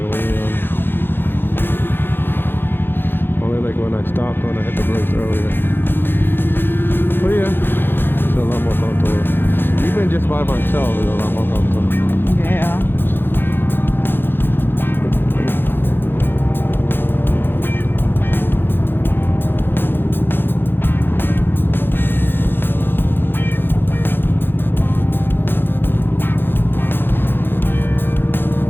leaning on. Only like when I stopped when I hit the brakes earlier. But yeah, it's a lot more comfortable. Even just by myself, it's a lot more comfortable. Yeah.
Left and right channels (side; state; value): right; late; 0.10 ms